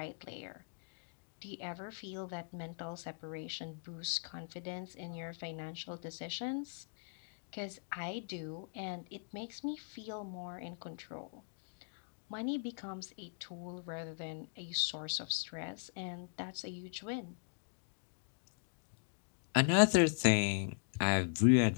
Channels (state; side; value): silent; right; digital silence